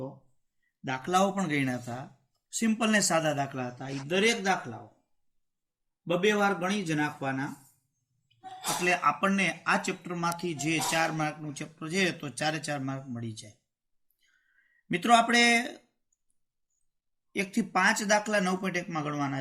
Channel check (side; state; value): both; identical; correlation 1.00